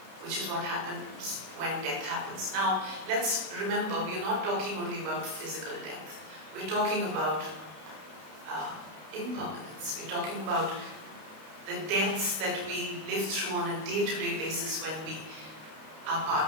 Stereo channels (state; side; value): late; left; 32 ms